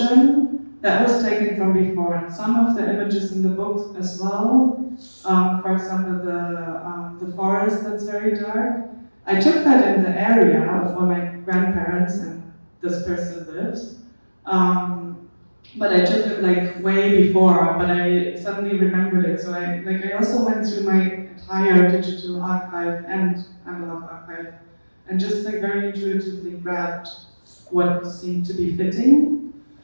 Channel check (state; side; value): inverted; both; correlation -1.00